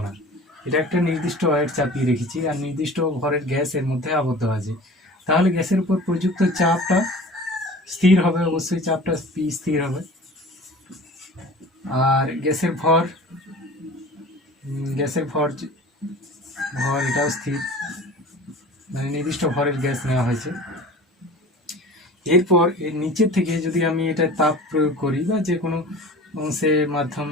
না, এটা একটা নির্দিষ্ট ওয়েট চাপিয়ে রেখেছি আর নির্দিষ্ট ভরের গ্যাস এর মধ্যে আবদ্ধ আছে। তাহলে গ্যাসের উপর প্রযুক্ত চাপটা স্থির হবে, অবশ্যই চাপটা পি স্থির হবে। আর গ্যাসের ভর এটাও স্থির, মানে নির্দিষ্ট ভরের গ্যাস নেওয়া হয়েছে। এরপর এর নিচের থেকে যদি আমি এটা তাপ প্রয়োগ করি বা যে কোনো অংশের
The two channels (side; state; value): both; normal; correlation 0.41